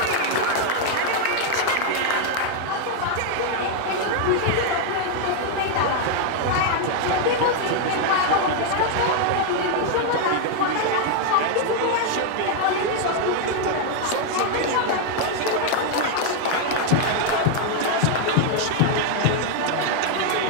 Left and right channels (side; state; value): both; different; correlation 0.00